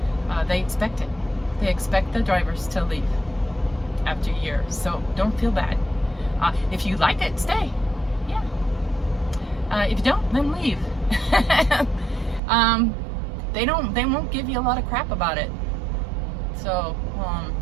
They expect it. They expect the drivers to leave after a year, so don't feel bad. If you like it, stay. Yeah. If you don't, then leave. They won't give you a lot of crap about it. So,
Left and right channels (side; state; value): left; drops out; at 12.4 s